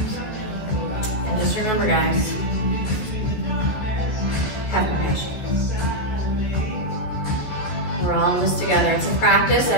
And just remember, guys, have patience. We're all in this together. It's a practice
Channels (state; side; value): late; right; 14 ms